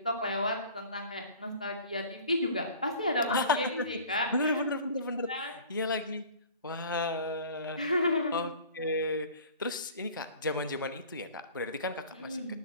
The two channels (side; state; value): both; inverted; correlation -0.45